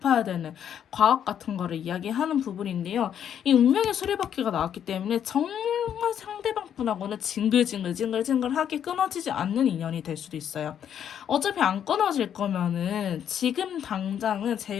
되는 과학 같은 거를 이야기하는 부분인데요. 이 운명의 수레바퀴가 나왔기 때문에 정말 상대방 분하고는 징글징글하게 끊어지지 않는 인연이 될 수도 있어요. 어차피 안 끊어질 거면은 지금 당장은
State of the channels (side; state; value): right; quieter; 9.2 dB